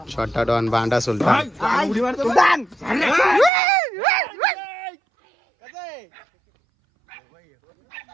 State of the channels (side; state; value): left; drops out; at 3.5 s